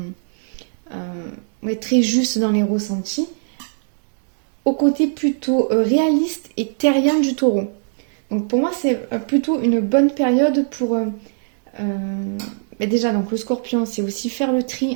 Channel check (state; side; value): silent; left; digital silence